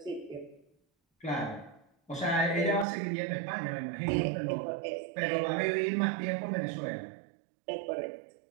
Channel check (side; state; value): left; drops out; at 2.9 s